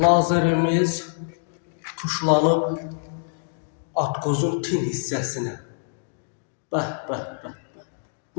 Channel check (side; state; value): right; silent; digital silence